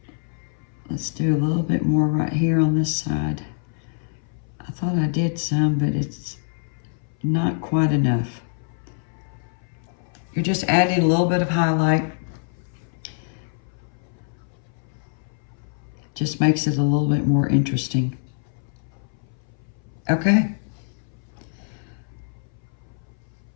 Let's do a little bit more right here on this side. I thought I did some, but it's not quite enough. You're just adding a little bit of highlight. Just makes it a little bit more interesting. Okay.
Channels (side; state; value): right; silent; 60 dB below the other